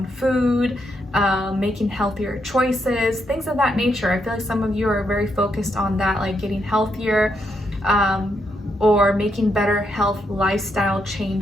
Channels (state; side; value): normal; both; correlation 0.79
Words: food, making healthier choices, things of that nature. I feel like some of you are very focused on that, like getting healthier, or making better health lifestyle